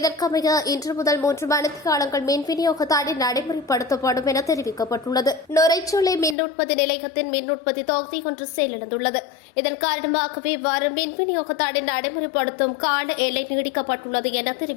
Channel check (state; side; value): drops out; right; at 6.4 s